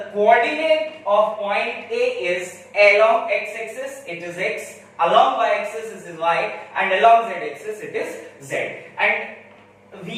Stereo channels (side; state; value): both; identical; correlation 1.00